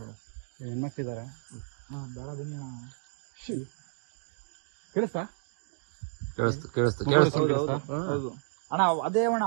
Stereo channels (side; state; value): left; silent; digital silence